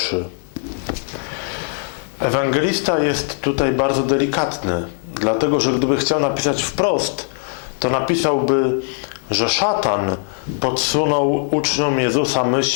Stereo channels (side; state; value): right; silent; 60 dB below the other